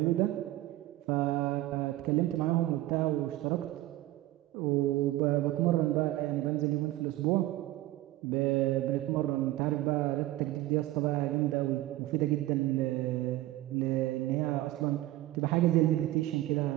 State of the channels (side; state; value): left; quieter; 16.3 dB